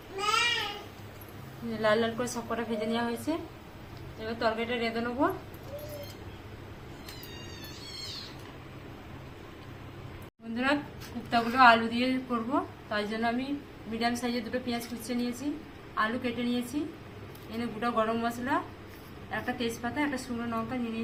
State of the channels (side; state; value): both; identical; correlation 1.00